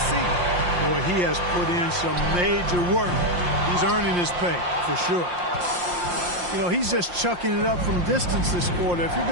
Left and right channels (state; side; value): late; left; 5.7 ms